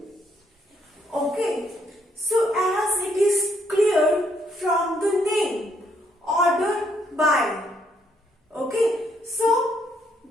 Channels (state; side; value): normal; both; correlation 0.71